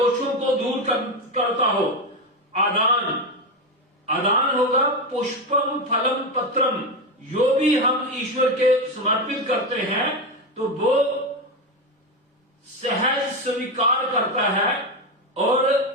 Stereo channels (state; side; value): normal; both; correlation 0.14